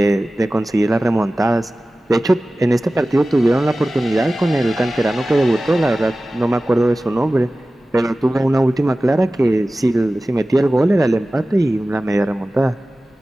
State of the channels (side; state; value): both; normal; correlation 0.96